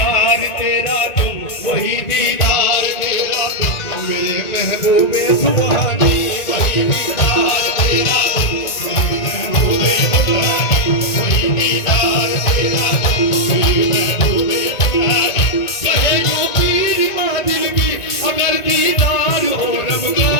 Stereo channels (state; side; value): late; right; 1.8 ms